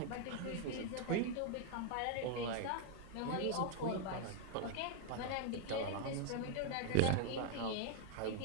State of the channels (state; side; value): different; both; correlation 0.00